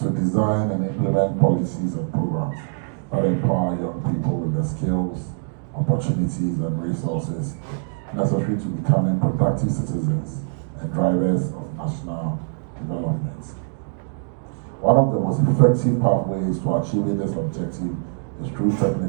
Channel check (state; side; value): silent; left; digital silence